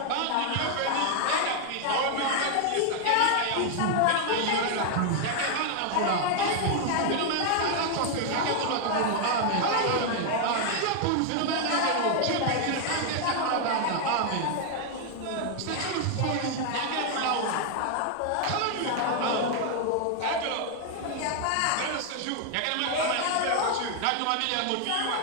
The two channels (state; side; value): different; both; correlation 0.00